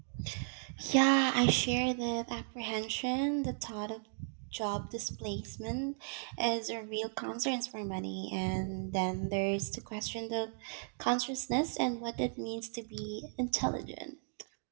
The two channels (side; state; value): left; silent; 54 dB below the other